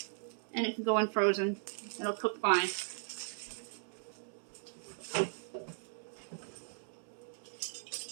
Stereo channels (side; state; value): left; silent; digital silence